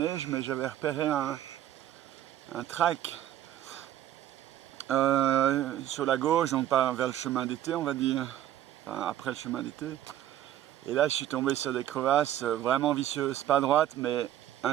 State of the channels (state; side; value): quieter; left; 12.3 dB